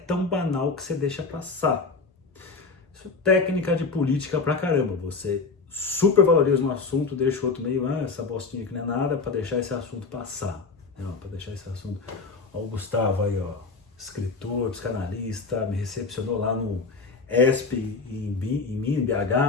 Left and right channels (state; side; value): quieter; right; 4.3 dB